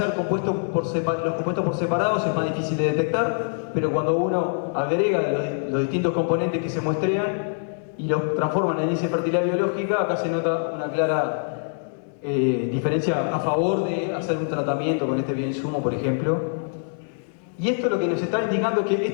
los compuestos por separados es más difícil de detectar, pero cuando uno agrega los distintos componentes que se muestrean y los transforma en índice de fertilidad biológica, acá se nota una clara diferencia a favor de hacer un tratamiento con este bioinsumo, por ejemplo. Y esto lo que nos está indicando es que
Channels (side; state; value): right; silent; digital silence